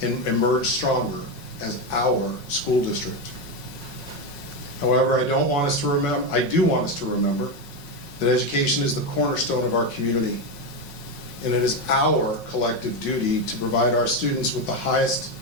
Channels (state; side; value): late; right; 5.5 ms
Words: and emerge stronger as our school district. However, I do want us to remember that education is the cornerstone of our community, and it is our collective duty to provide our students with the highest